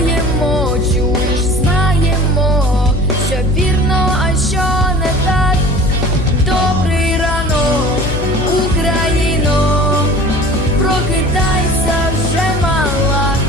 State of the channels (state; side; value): noise; left; hum, 4 dB below the sound